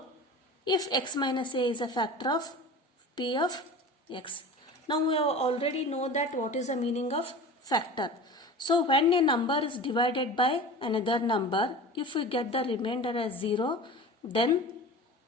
if x minus a is a factor of p of x. Now we have already know that what is the meaning of factor. So when a number is divided by another number, if we get the remainder as 0, then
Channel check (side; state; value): both; normal; correlation 0.35